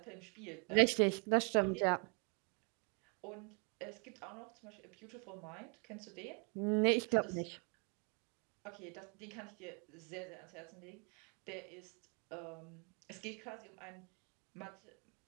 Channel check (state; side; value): quieter; left; 37.2 dB